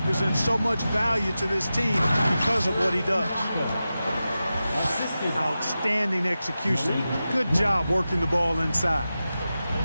so much value to this team because of what he does. Outstanding execution. Good job working the ball inside.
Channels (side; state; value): both; inverted; correlation -0.93